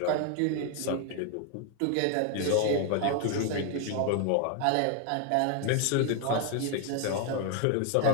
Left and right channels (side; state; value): both; different; correlation 0.00